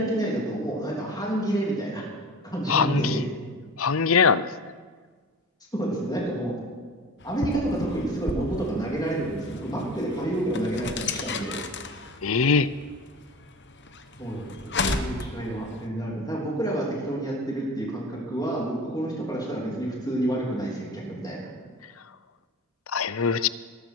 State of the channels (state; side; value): normal; both; correlation 0.33